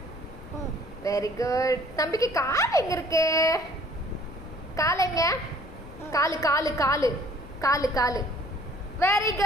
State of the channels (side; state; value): left; noise; rumble, 17 dB below the sound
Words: Very good. தம்பிக்கு கால் எங்க இருக்கு? கால் எங்க? காலு காலு காலு காலு காலு. Very